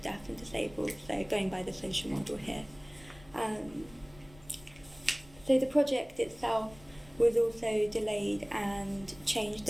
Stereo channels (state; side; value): noise; left; rumble, 23 dB below the sound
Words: deaf and disabled, so going by the social model here. So the project itself was also delayed and changed